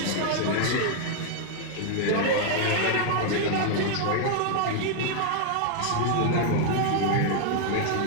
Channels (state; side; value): different; both; correlation 0.00